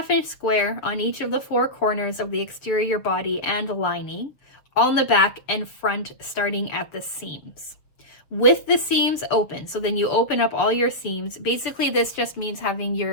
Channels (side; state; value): right; late; 6.9 ms